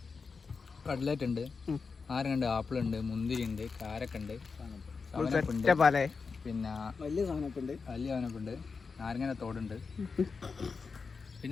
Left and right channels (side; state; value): right; quieter; 4.9 dB